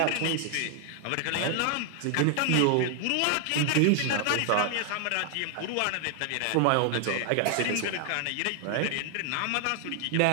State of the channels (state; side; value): different; both; correlation 0.00